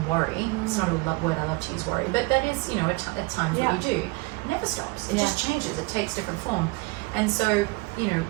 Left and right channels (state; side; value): quieter; left; 25.4 dB